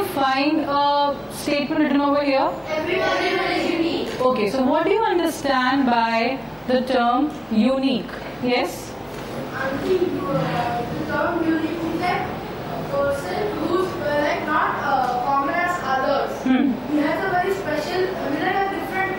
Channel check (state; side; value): identical; both; correlation 1.00